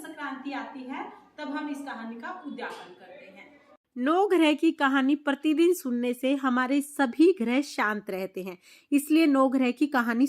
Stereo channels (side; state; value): both; identical; correlation 1.00